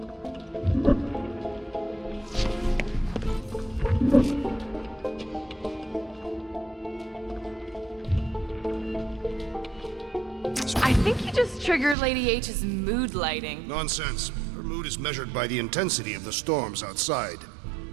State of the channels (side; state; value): left; drops out; at 12.0 s